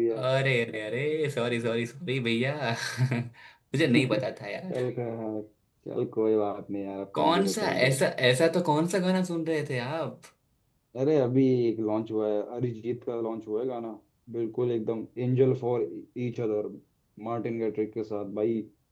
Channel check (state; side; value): identical; both; correlation 1.00